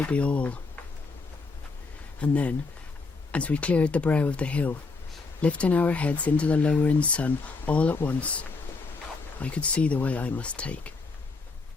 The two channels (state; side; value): quieter; right; 4.0 dB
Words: be all. And then, as we cleared the brow of the hill, lifting our heads into the lowering sun all at once, I could see the way I must take.